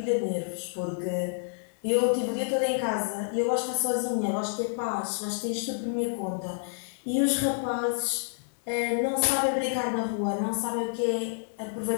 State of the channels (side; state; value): right; silent; digital silence